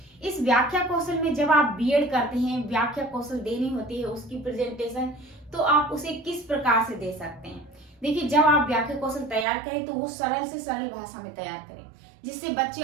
इस व्याख्या कौशल में जब आप बीएड करते हैं, व्याख्या कौशल देनी होती है, उसकी प्रेजेंटेशन, तो आप उसे किस प्रकार से दे सकते हैं। देखिए, जब आप व्याख्या कौशल तैयार करें तो वो सरल से सरल भाषा में तैयार करें जिससे बच्चे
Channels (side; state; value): left; drops out; at 9.5 s